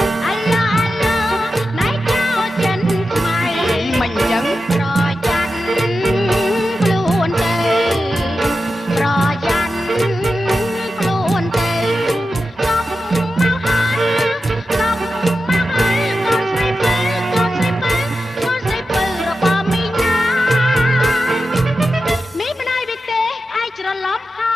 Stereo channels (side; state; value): both; normal; correlation 0.91